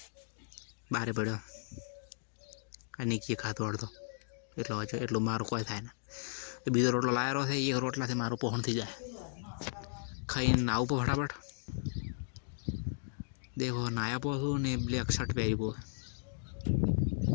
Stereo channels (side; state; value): right; silent; digital silence